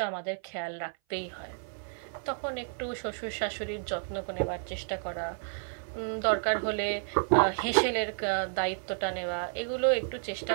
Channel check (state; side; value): silent; left; 57 dB below the other